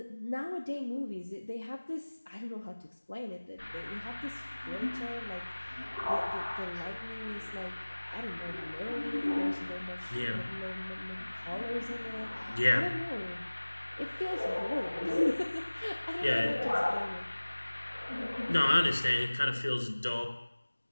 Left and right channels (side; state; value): both; inverted; correlation -1.00